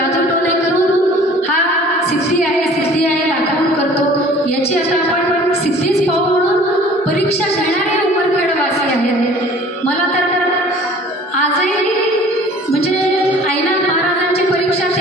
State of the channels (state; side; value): normal; both; correlation 0.49